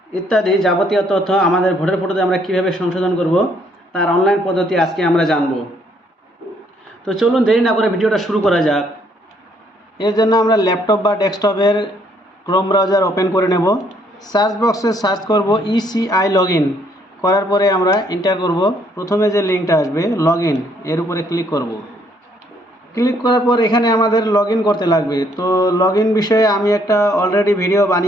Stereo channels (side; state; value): both; normal; correlation 0.68